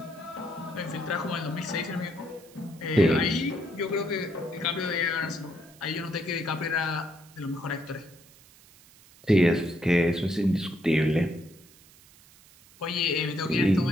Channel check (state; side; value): noise; right; hiss, 25 dB below the sound